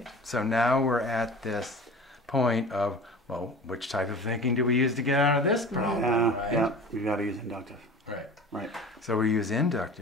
So now we're at this point of, well, which type of thinking do we use to get out of this problem? Yeah, right? yeah. We've got to use inductive. Right. Right. So we use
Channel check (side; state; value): both; normal; correlation 0.38